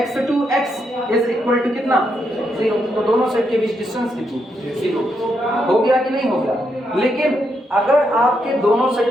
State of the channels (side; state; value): both; normal; correlation 0.80